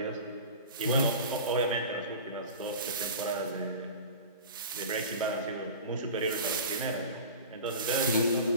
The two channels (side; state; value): both; inverted; correlation -0.35